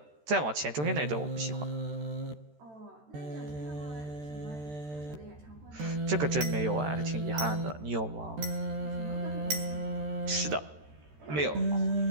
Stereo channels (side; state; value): left; late; 13 ms